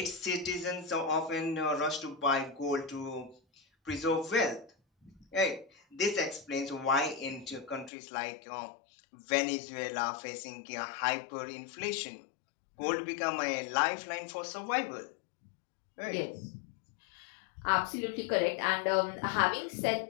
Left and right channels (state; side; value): drops out; right; at 7.9 s